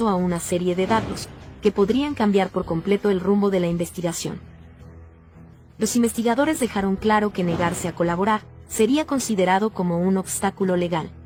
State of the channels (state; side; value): identical; both; correlation 1.00